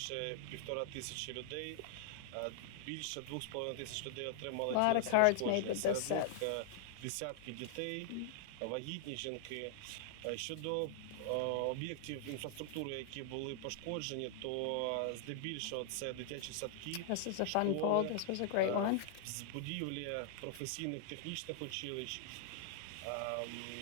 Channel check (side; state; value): both; different; correlation -0.01